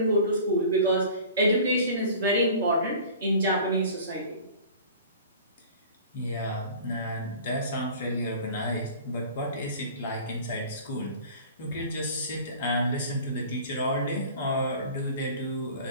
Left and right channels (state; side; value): inverted; both; correlation -0.43